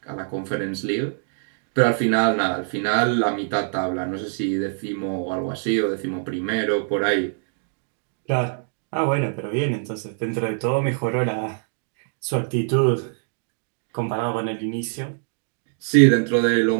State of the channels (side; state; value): left; silent; digital silence